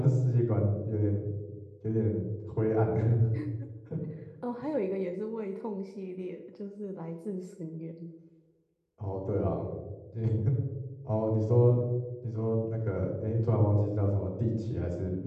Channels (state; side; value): identical; both; correlation 1.00